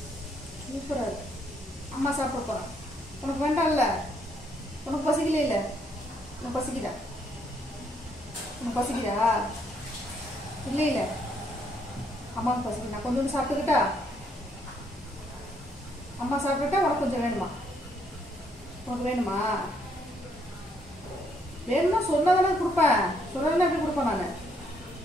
சூப்பராக அம்மா சாப்பிட போகிறேன். உனக்கு வேண்டாம்ல? உனக்கு பசிக்கல? இல்லை உனக்கு பசிக்குதா? உனக்கு பசிக்குதா? இல்லை இல்லை அம்மாவுக்கு பசிக்குது. நான் கொஞ்சோண்டு சாப்பிட்டுக்கிட்டா? அம்மா சாப்பிட்டுட்டா உனக்கு கொஞ்சம் வேணுமா? உனக்கு வேணுமா? வேணுமா சொன்னதானே கொடுப்பேன். சொன்னதானே எப்படி கொடுப்பேன் நான்?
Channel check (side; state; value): both; normal; correlation 0.71